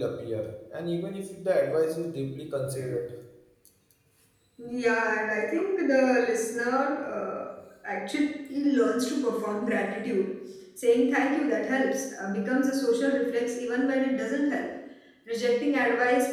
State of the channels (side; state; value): both; identical; correlation 1.00